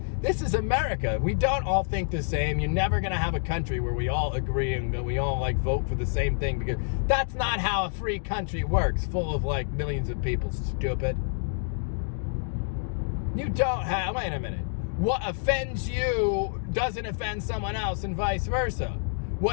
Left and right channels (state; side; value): silent; right; digital silence